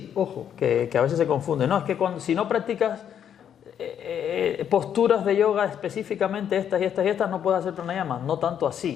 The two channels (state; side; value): quieter; right; 9.0 dB